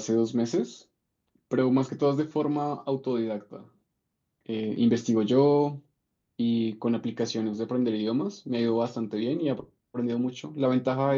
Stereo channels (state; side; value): identical; both; correlation 1.00